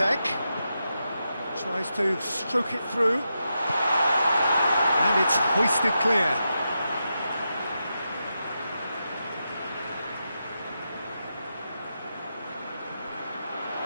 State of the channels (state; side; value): inverted; both; correlation -0.87